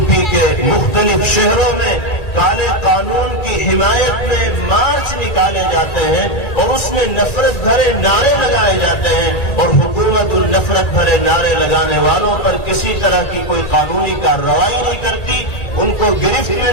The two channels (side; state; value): right; late; 1.8 ms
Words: پی کے مختلف شہروں میں کالے قانون کی حمایت میں مارچ نکالے جاتے ہیں اور اس میں نفرت بھرے نعرے لگائے جاتے ہیں اور حکومت ان نفرت بھرے نعرے لگانے والوں پر کسی طرح کی کوئی قانونی کارروائی نہیں کرتی، ان کو گرفت میں